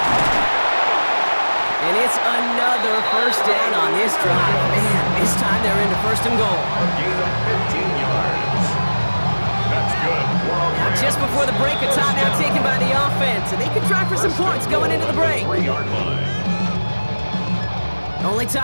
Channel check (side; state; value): both; inverted; correlation -1.00